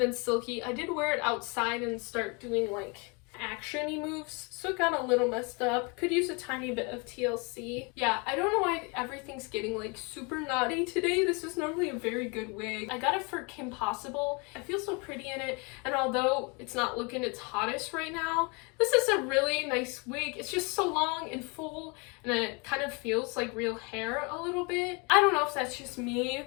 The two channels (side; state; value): right; quieter; 30.9 dB